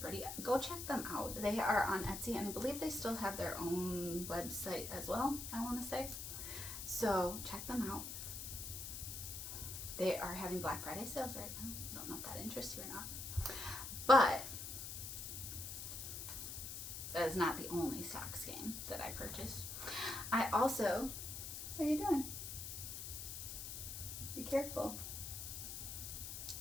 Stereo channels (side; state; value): left; noise; hiss, 6 dB below the sound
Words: pretty? Go check them out. They are on Etsy, and I believe they still have their own website as well, I want to say. So check them out. They are having Black Friday sales right now. I don't know if that interests you or not. But that is not the only sock skein that I purchased. I also, what are you doing? Be careful.